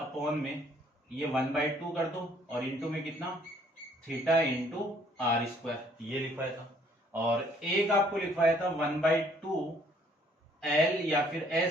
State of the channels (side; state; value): both; normal; correlation 0.62